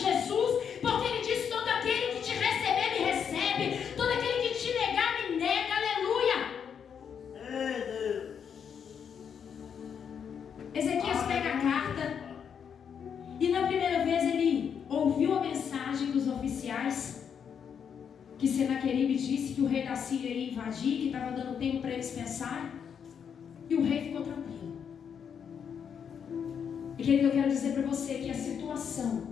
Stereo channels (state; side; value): quieter; right; 7.5 dB